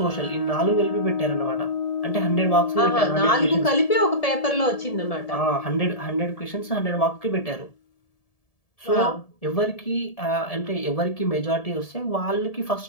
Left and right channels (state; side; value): late; right; 1.7 ms